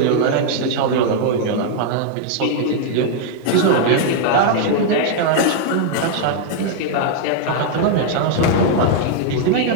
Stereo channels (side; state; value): both; different; correlation -0.01